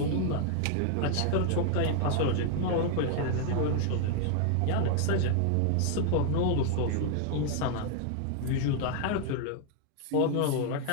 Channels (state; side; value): different; both; correlation 0.00